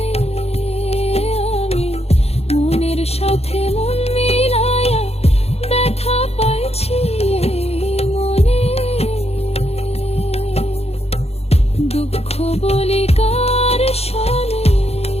আমি মনের সাথে মন মিলাইয়া ব্যথা পাইছি মনে। দুঃখ বলি কার শোনে,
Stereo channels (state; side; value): late; right; 0.30 ms